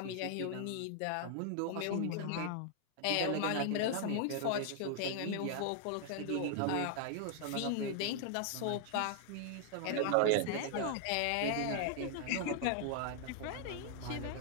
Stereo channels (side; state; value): both; different; correlation 0.00